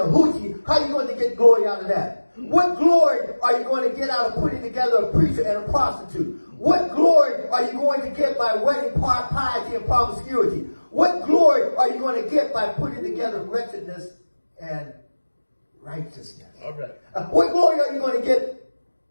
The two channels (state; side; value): inverted; both; correlation -1.00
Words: hoochie, how are you going to get glory out of that? What glory are you going to get out of putting together a preacher and a prostitute? What glory are you going to get by wedding piety and promiscuity? What glory are you going to get by putting together wretchedness and righteousness? All right. What glory are you going to get